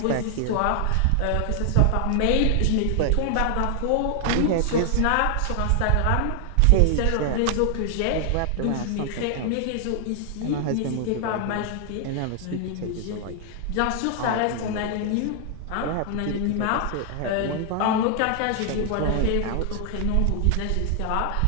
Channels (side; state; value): both; different; correlation 0.00